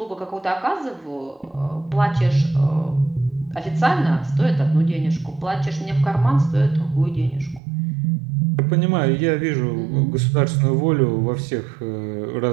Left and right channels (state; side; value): drops out; left; at 7.6 s